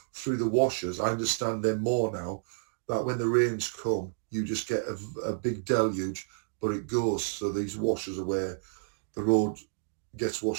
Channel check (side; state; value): left; silent; digital silence